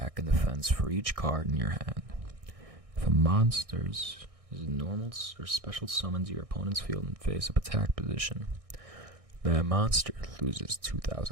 and defense for each card in your hand. If a monster's normal or special summons your opponent's field in face-up attack position, that monster loses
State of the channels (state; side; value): late; left; 1.6 ms